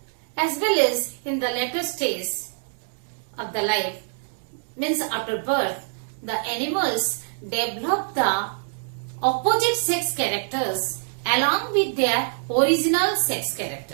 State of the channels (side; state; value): left; silent; digital silence